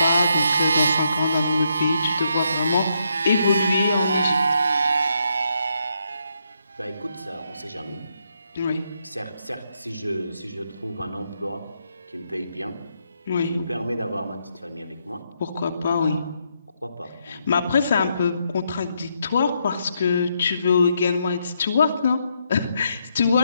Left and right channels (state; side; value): inverted; both; correlation -0.78